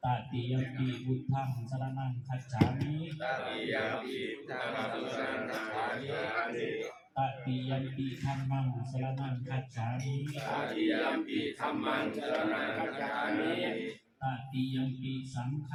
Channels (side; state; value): both; identical; correlation 1.00